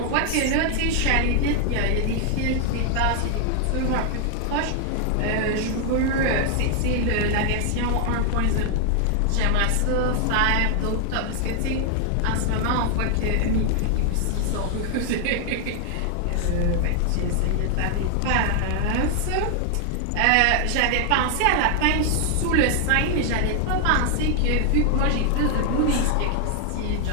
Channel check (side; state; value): both; different; correlation 0.00